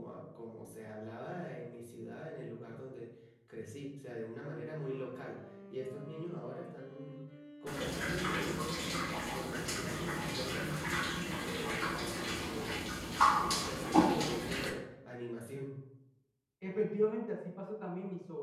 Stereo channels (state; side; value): identical; both; correlation 1.00